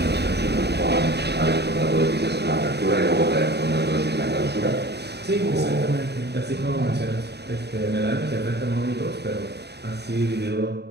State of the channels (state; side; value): late; left; 0.48 ms